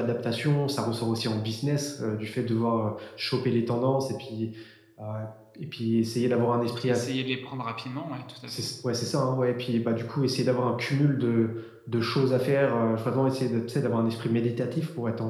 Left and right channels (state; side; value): identical; both; correlation 1.00